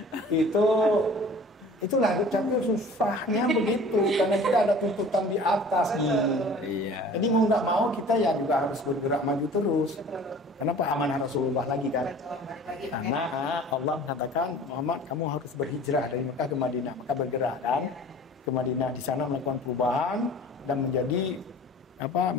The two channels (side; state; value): both; normal; correlation 0.45